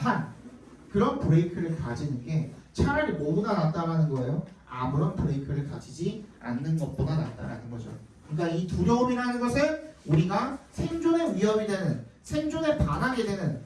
그런 브레이크를 가지는 게 차라리 뭐보다 낫다라는 거예요. 아무런 브레이크를 가지지 않는 것보다 낫다라는 거죠. 그러니까 이 두려움이라는 것은 우리가 생존의 위협이 되는 생존에 반하게 되는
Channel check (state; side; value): identical; both; correlation 1.00